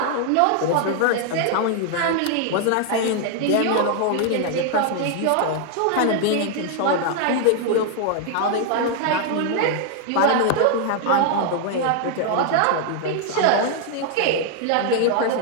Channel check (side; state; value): both; different; correlation 0.00